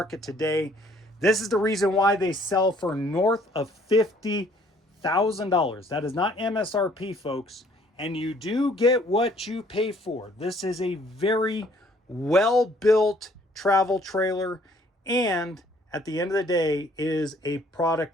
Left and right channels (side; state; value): both; normal; correlation 0.61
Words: today. This is the reason why they sell for north of $50,000. That is not MSRP, folks. And you do get what you pay for. This is a very well-built travel trailer, and at the end of the day, it is a